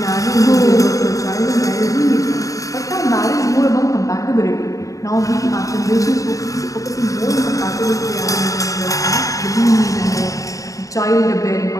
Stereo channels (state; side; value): late; right; 0.16 ms